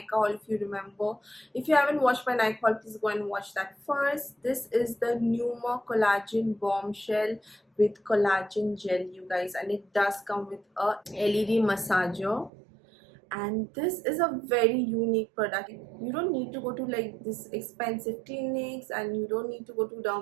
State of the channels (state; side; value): drops out; left; at 12.5 s